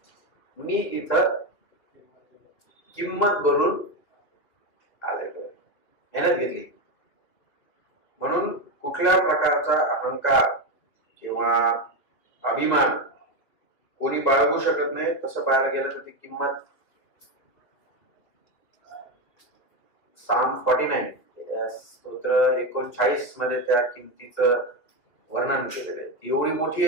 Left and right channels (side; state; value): right; late; 2.6 ms